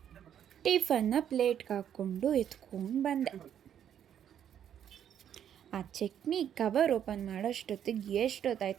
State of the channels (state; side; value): quieter; left; 9.5 dB